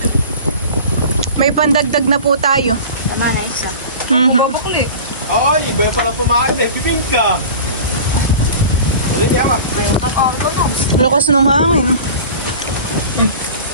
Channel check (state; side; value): inverted; both; correlation -0.37